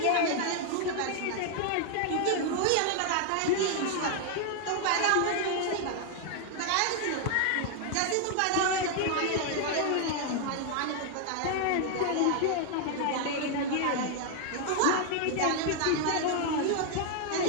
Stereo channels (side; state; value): both; different; correlation 0.00